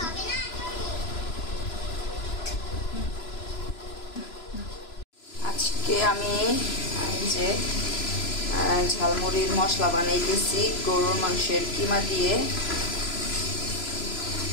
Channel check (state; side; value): late; right; 3.0 ms